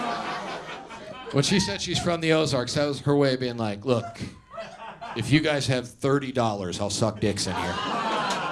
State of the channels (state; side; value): identical; both; correlation 1.00